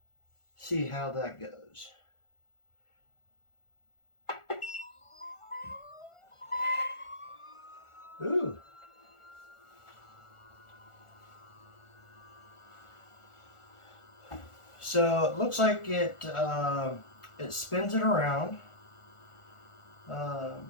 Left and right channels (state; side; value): late; right; 1.4 ms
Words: see how that goes. Ooh. So it looks like it spins it around,